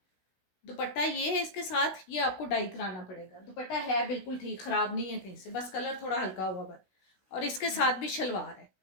दुपट्टा ये है इसके साथ, ये आपको डाई कराना पड़ेगा। दुपट्टा है बिल्कुल ठीक, ख़राब नहीं है कहीं से, बस कलर थोड़ा हल्का हुआ बस। और इसके साथ भी शलवार है।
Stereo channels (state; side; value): late; right; 16 ms